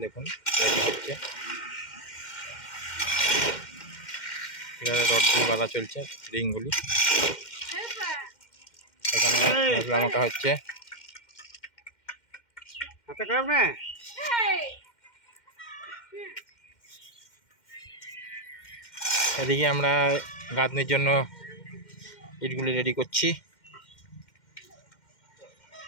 দেখুন রেডি হচ্ছে, পিলারের রডগুলি বাঁধা চলছে, রিংগুলি। এখানে মশলা মাখা হচ্ছে। এদিকে আমরা গাঁথনির জন্য ইটগুলি রেডি করছি,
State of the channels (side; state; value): right; late; 2.1 ms